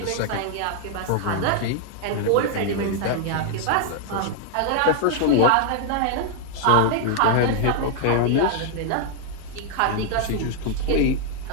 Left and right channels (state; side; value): different; both; correlation 0.00